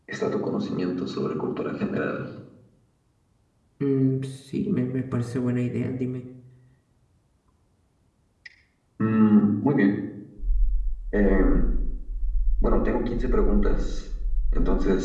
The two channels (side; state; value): both; identical; correlation 1.00